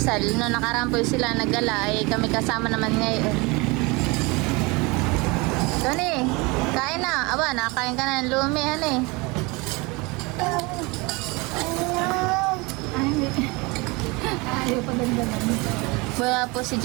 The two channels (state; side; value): quieter; left; 26.0 dB